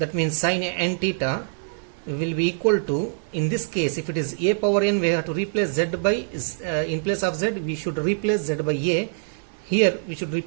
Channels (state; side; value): silent; left; digital silence